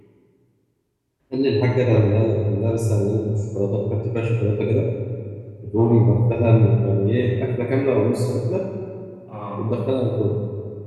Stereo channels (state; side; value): identical; both; correlation 1.00